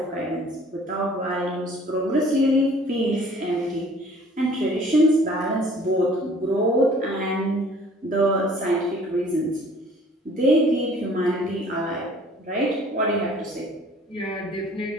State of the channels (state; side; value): normal; both; correlation 0.53